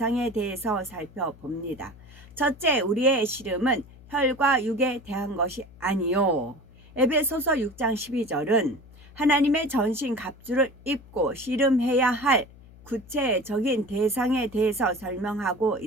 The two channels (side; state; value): left; noise; hum, 22 dB below the sound